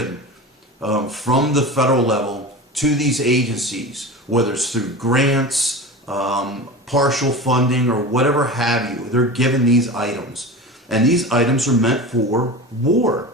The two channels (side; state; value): both; normal; correlation 0.30